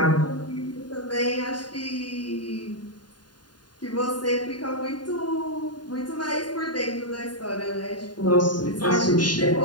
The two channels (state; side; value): late; right; 0.70 ms